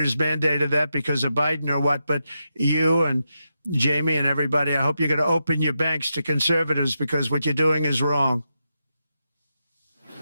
mandated that because of Biden or what, but you and Jamie and everybody, I hope you're going to open your banks to conservatives, because what you're doing is wrong.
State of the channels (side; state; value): both; inverted; correlation -0.86